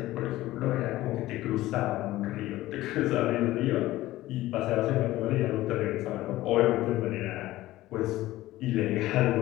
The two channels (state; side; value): quieter; right; 16.4 dB